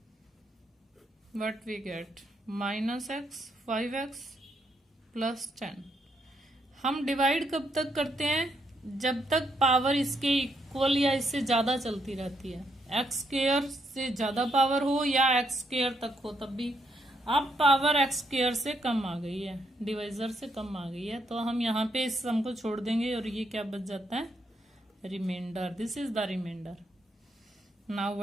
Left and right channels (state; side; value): normal; both; correlation 0.76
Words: what we get -x 5x plus 10। हम डिवाइड कब तक करते हैं, जब तक पावर इसके इक्वल या इससे ज्यादा चलती रहती है, एक्स स्क्वायर से ज्यादा पावर हो या एक्स स्क्वायर तक हो तब भी। अब पावर एक्स स्क्वायर से कम आ गई है, डिवाइजर से कम आ गई है, तो हम यहाँ पे इस सम को छोड़ देंगे और ये क्या बच जाता है, remainder, this is the remainder. Now